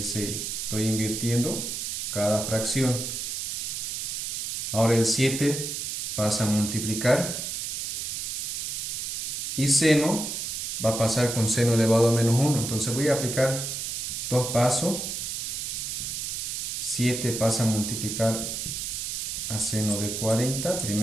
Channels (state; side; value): noise; right; hiss, 3 dB below the sound